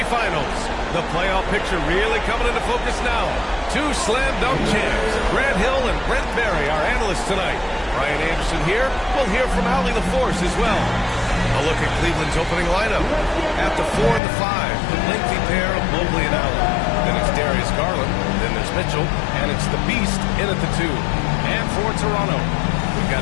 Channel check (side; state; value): right; drops out; at 14.2 s